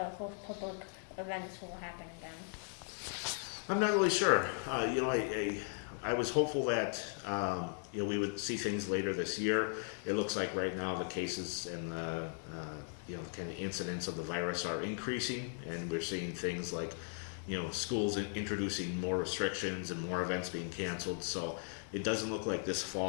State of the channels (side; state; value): right; silent; 53 dB below the other